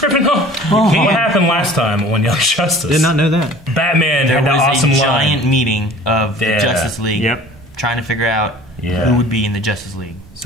What happened last time on Young Justice? Did not know that. Batman There had that was awesome a giant line. meeting of the Justice League trying to figure out who would be in the Justice League.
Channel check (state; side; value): normal; both; correlation 0.47